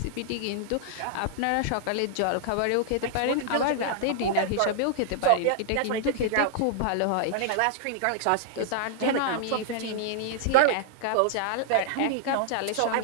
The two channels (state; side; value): different; both; correlation -0.01